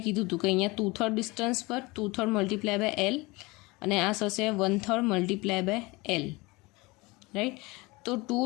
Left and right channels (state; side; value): quieter; right; 23.7 dB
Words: કીધું હતું કે અહીંયા 2/3 ડિસ્ટન્સ પર 2/3 મલ્ટીપ્લાય બાય L અને આ થશે 1/3 મલ્ટીપ્લાય બાય L, રાઈટ. તો 2